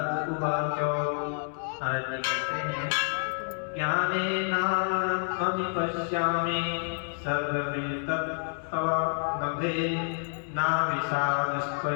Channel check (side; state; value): right; silent; digital silence